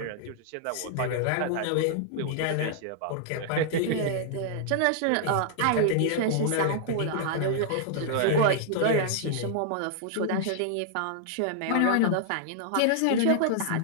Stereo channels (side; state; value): both; different; correlation -0.01